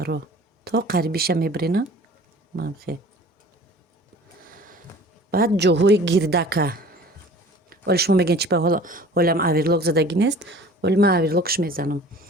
То қарибиша мебарена. Манам хе. Баъд ҷоҳои гирдака. ولی شما میگین چی به حالم اویرلاک زدگی نیست، ولی من اویرلاکش میزنم.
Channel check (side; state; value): both; normal; correlation 0.45